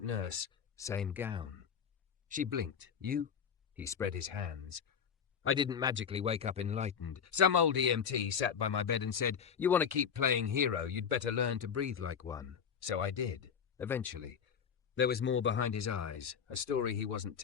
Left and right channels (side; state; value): right; quieter; 7.3 dB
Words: nurse, same gown. She blinked. You? He spread his hands. I didn't magically wake up enlightened. Some old EMT sat by my bed and said, you want to keep playing hero, you'd better learn to breathe like one. So I did, eventually. There was more behind his eyes, a story he wasn't